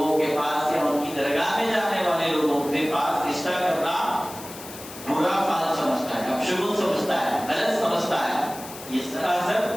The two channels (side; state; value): left; noise; hiss, 14 dB below the sound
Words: کے پاس یا ان کی درگاہ میں جانے والے لوگوں کے پاس رشتہ کرنا برا فال سمجھتا ہے، اپشگن سمجھتا ہے، غلط سمجھتا ہے. یہ سراسر